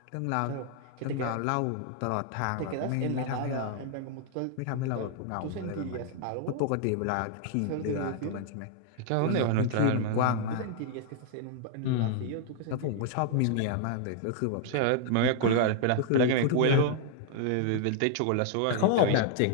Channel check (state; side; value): different; both; correlation -0.01